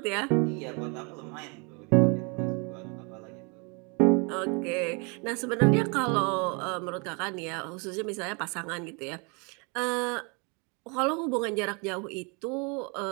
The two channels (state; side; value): quieter; left; 32.6 dB